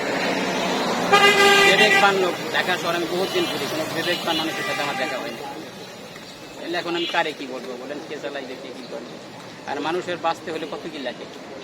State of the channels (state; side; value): identical; both; correlation 1.00